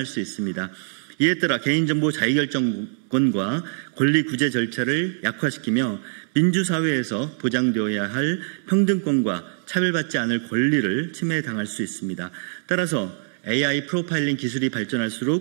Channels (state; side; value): silent; left; digital silence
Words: 수 있습니다. 이에 따라 개인정보 자유결정권과 권리 구제 절차를 약화시키며 민주사회에서 보장되어야 할 평등권과 차별받지 않을 권리를 침해당할 수 있습니다. 따라서 AI 프로파일링 기술이